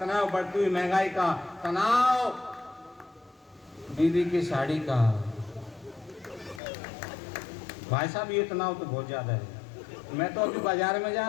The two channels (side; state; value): right; drops out; at 6.6 s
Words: बढ़ती हुई महंगाई का, तनाव बीवी की साड़ी का। भाई साहब, ये तनाव तो बहुत ज्यादा है। मैं तो अभी बाजार में जा